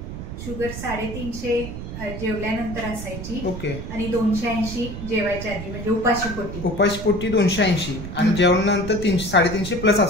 शुगर 350 जेवल्यानंतर असायची. ओके. आणि 280 जेवायच्या आधी, म्हणजे उपाशी पोटी 280 आणि जेवणानंतर 350 प्लस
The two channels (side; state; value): right; noise; rumble, 8 dB below the sound